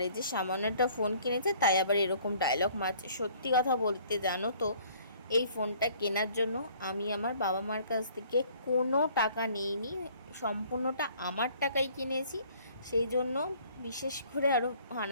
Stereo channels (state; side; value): inverted; both; correlation -0.57